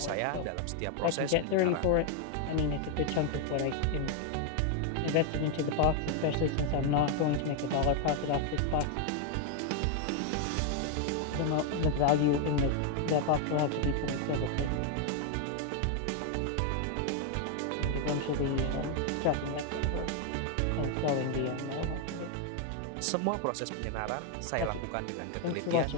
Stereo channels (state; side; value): different; both; correlation 0.01